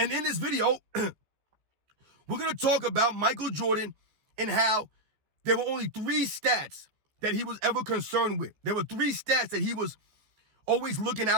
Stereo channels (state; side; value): late; left; 14 ms